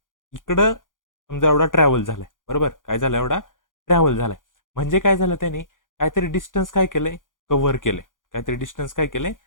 इकडं समजा एवढा ट्रॅव्हल झालाय, बरोबर. काय झालं, एवढा ट्रॅव्हल झालाय. म्हणजे काय झालं, त्याने काहीतरी डिस्टन्स काय केलंय, कव्हर केलंय. काहीतरी डिस्टन्स काय केलंय,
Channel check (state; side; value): late; right; 0.89 ms